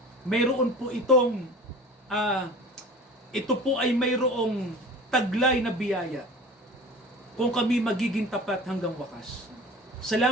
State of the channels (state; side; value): normal; both; correlation 0.39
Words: mayroon po ito po ay mayroong taglay na biyaya kung kami magiging tapat hanggang wakas.